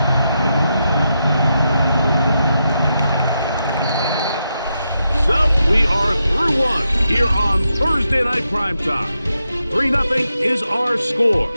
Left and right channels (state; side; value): inverted; both; correlation -0.85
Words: So we are through one here on Thursday Night Primetime. 3-0 is our score.